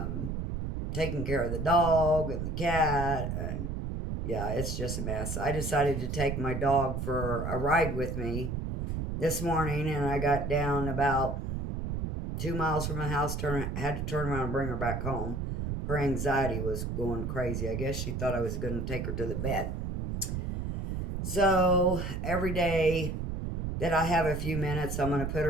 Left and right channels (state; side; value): noise; right; rumble, 3 dB below the sound